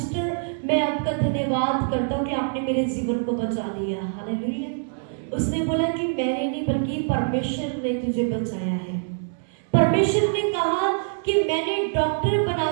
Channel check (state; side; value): silent; left; 62 dB below the other